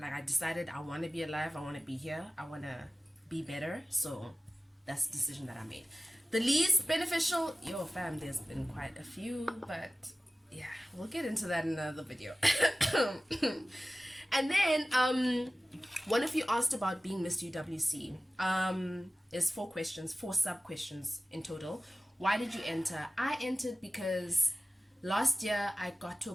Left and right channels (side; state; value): both; normal; correlation 0.96